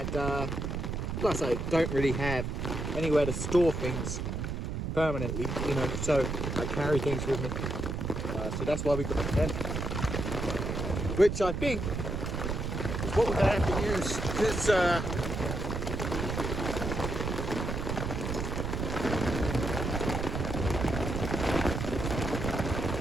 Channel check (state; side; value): noise; right; rumble, 3 dB below the sound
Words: plus I don't really have anywhere to store things permanently, you know, so I carry things with me. So that's why we got the tent. Which I think what we're going to have to use this